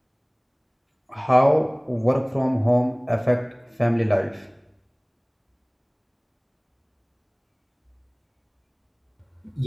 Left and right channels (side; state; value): both; identical; correlation 1.00